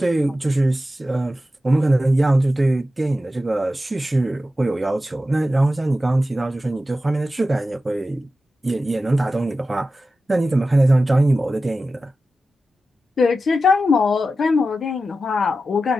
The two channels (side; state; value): both; normal; correlation 0.93